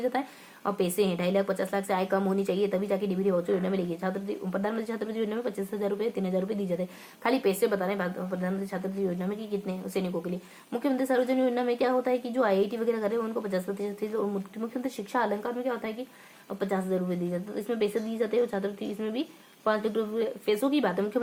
जाता है, अब पैसे हैं 2.5 लाख 50 लाख से आय कम होनी चाहिए, तभी जाके डीबीटी वाउचर योजना में लेगी। प्रधानमंत्री छात्रवृत्ति योजना में 25,000 रुपये 3,000 रुपये दी जाते हैं। खाली पैसे बता रहे हैं प्रधानमंत्री छात्रवृत्ति योजना में कि कितने सैनिकों के लिए। मुख्यमंत्री सर्वजन योजना में क्या होता है कि जो IIT वगैरह करे उनको 50% और मुख्यमंत्री शिक्षा अलंकार में क्या होता है कि 50,000 रुपये दी जाते हैं। तो इसमें पैसे दिए जाते हैं, छात्रवृत्ति इसमें भी 5 लाख रुपये पैसों की बात है।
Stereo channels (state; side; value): identical; both; correlation 1.00